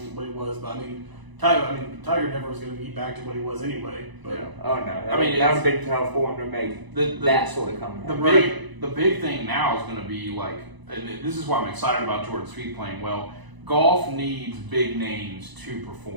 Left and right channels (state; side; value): late; left; 1.0 ms